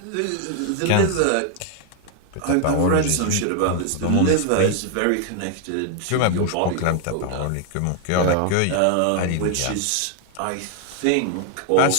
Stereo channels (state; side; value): different; both; correlation 0.00